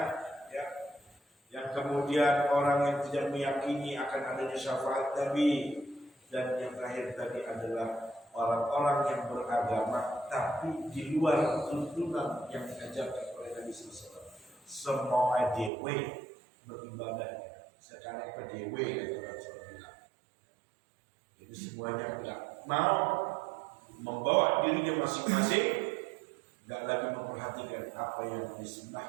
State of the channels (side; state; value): left; drops out; at 15.7 s